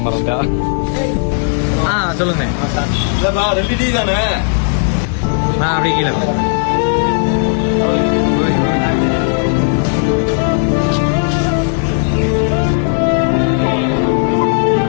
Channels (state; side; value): silent; right; digital silence